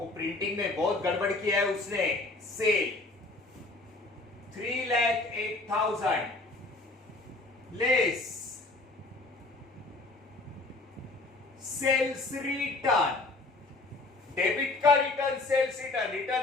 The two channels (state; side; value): quieter; right; 3.2 dB